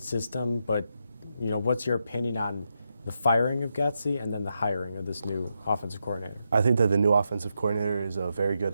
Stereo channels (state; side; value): inverted; both; correlation -0.84